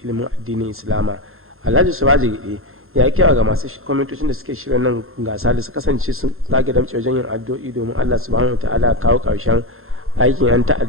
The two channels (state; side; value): late; left; 0.61 ms